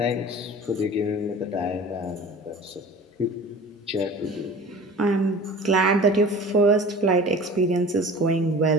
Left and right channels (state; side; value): normal; both; correlation 0.41